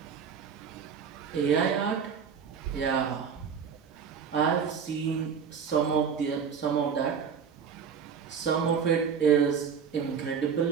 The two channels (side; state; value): left; quieter; 7.0 dB